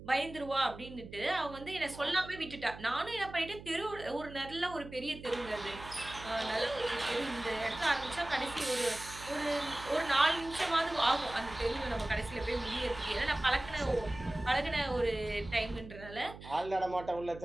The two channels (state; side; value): noise; right; hum, 15 dB below the sound